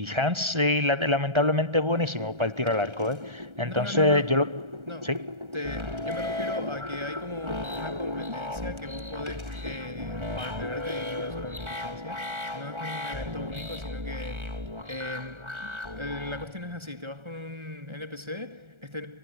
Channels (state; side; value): late; left; 1.3 ms